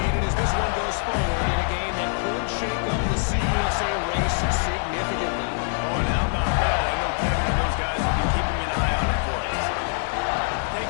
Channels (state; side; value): silent; right; 62 dB below the other